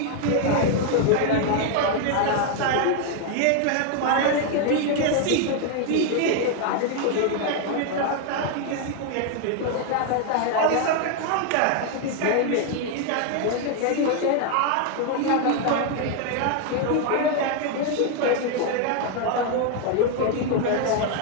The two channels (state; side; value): different; both; correlation 0.01